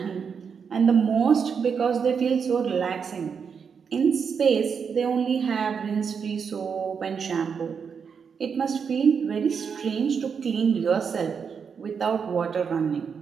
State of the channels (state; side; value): quieter; left; 6.4 dB